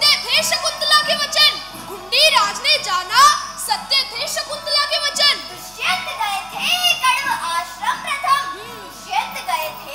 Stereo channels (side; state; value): left; noise; hum, 28 dB below the sound